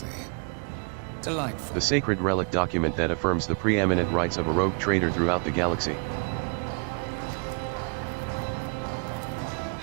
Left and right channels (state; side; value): quieter; left; 38.7 dB